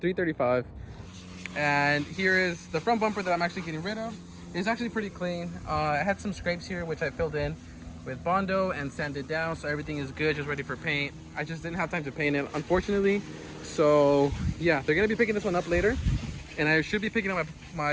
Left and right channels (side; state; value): both; identical; correlation 1.00